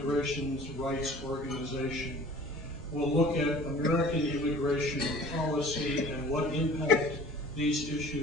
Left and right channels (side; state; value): right; noise; hum, 17 dB below the sound